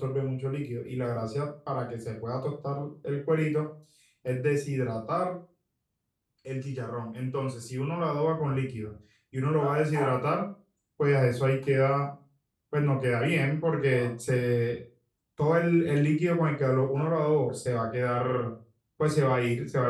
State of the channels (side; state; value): both; identical; correlation 1.00